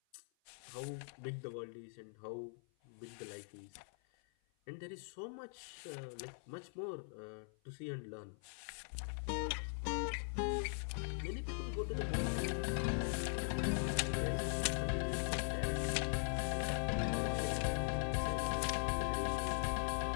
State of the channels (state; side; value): silent; right; 50 dB below the other